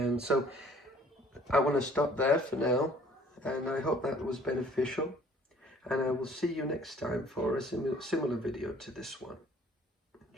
so I want to stop there for now, and I hope that was beneficial, and I will see you next time for a similar video to this one.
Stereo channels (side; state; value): both; normal; correlation 0.56